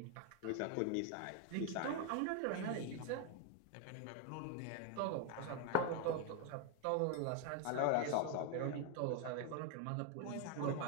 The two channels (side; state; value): both; different; correlation 0.01